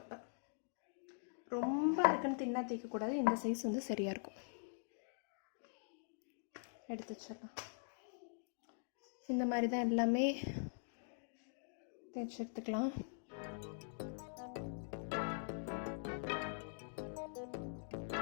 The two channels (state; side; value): silent; right; digital silence